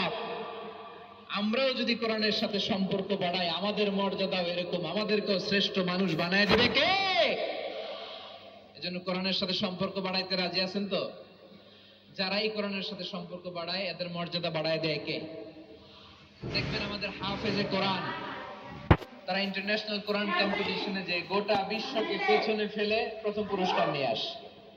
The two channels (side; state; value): both; identical; correlation 1.00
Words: আমরাও যদি কোরআনের সাথে সম্পর্ক বাড়াই, আমাদের মর্যাদাও এরকম, আমাদেরকেও শ্রেষ্ঠ মানুষ বানায় দেবে কে? এজন্য কোরআনের সাথে সম্পর্ক বাড়াইতে রাজি আছেন তো? যারাই কোরআনের সাথে সম্পর্ক বাড়ায়, এদের মর্যাদা বাড়ায় দেয় কে? দেখবেন আমাদের হাফেজে কোরআন, তারা ইন্টারন্যাশনাল কোরআন কম্পিটিশনে যে গোটা বিশ্বকে পেছনে ফেলে প্রথম পুরস্কার নিয়ে আসে।